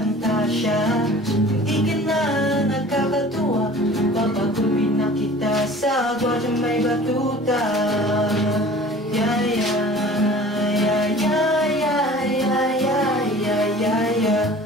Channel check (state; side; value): normal; both; correlation 0.44